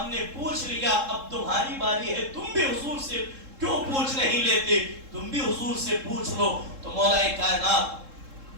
نے پوچھ لیا، اب تمہاری باری ہے، تم بھی حضور سے کیوں پوچھ نہیں لیتے، تم بھی حضور سے پوچھ لو۔ تو مولا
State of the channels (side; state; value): left; late; 3.7 ms